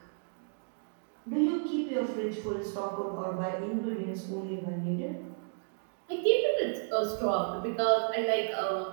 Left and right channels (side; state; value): left; silent; digital silence